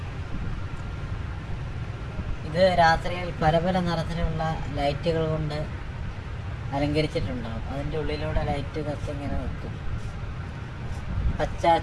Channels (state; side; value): identical; both; correlation 1.00